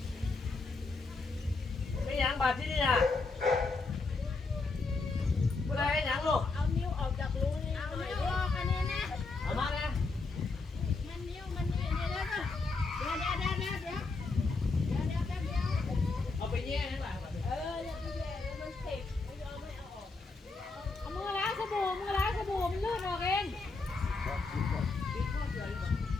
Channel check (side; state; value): right; quieter; 3.8 dB